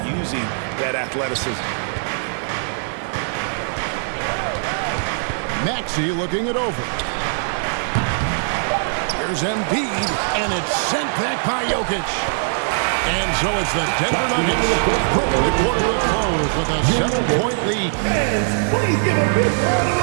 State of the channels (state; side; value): silent; left; digital silence